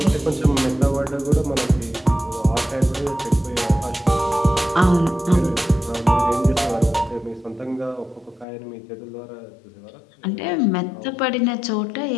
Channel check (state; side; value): drops out; right; at 8.5 s